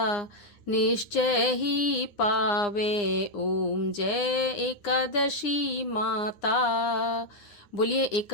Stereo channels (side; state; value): right; late; 9.8 ms